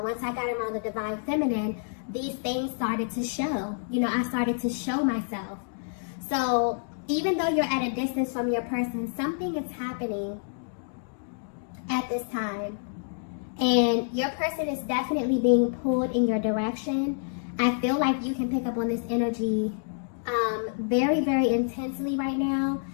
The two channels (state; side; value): silent; right; digital silence